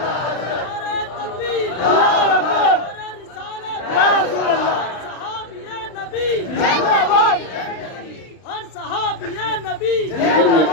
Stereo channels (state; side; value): late; right; 32 ms